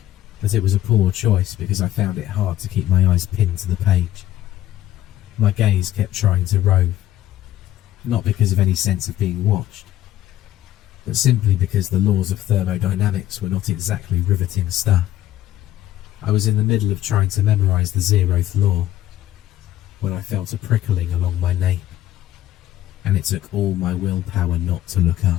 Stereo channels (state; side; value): quieter; right; 13.4 dB